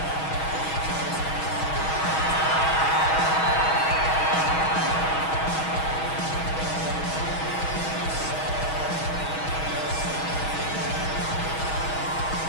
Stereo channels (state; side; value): late; right; 6.3 ms